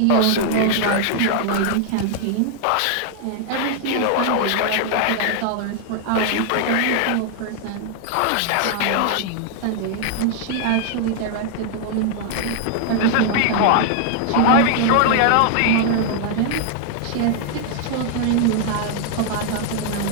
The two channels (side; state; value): both; different; correlation 0.00